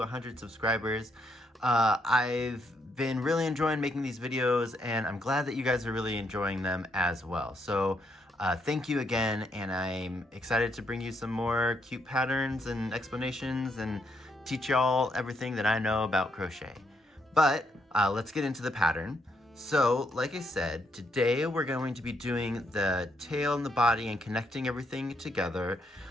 subscribers. I've been really enjoying making these videos, and I'm glad that you guys are really enjoying them as well. So thank you again, and I'm excited to bring you some more cute patterns and explanations and teach y'all everything that I know about crochet. But let's get into the pattern. So like I said, today we're going to be doing the tail and the body and connecting everything together,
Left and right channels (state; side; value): normal; both; correlation 0.76